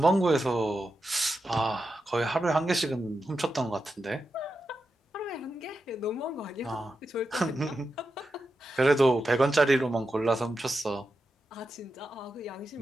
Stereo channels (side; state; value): both; normal; correlation 0.89